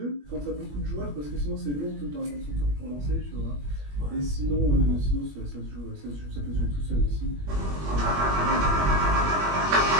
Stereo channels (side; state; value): left; late; 21 ms